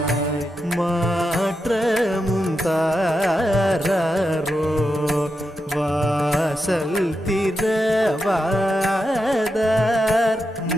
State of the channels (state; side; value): normal; both; correlation 0.87